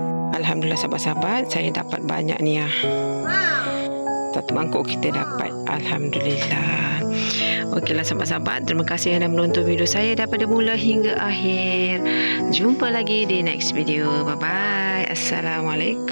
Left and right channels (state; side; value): inverted; both; correlation -1.00